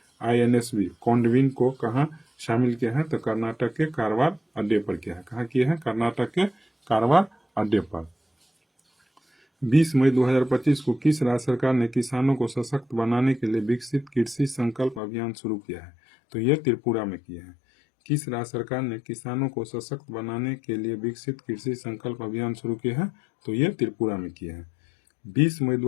INSV कोंडविन को कहाँ शामिल किया है? तो कर्नाटक के कारवार अड्डे पर किया है। कहाँ किया है? कर्नाटक के कारवार अड्डे पर। 20 मई 2025 को किस राज्य सरकार ने किसानों को सशक्त बनाने के लिए विकसित कृषि संकल्प अभियान शुरू किया है? तो यह त्रिपुरा में किया है। किस राज्य सरकार ने किसानों को सशक्त बनाने के लिए विकसित कृषि संकल्प अभियान शुरू किया है? तो यह त्रिपुरा में किया है। 20 मई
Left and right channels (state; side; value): drops out; right; at 15.0 s